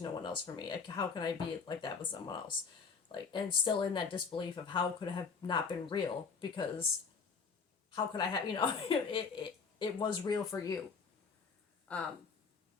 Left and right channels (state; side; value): quieter; right; 5.4 dB